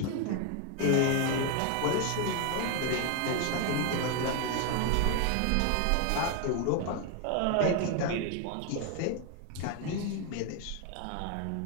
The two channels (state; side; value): different; both; correlation 0.01